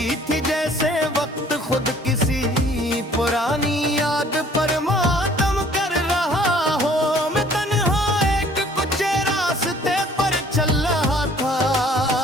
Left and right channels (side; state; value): both; normal; correlation 0.56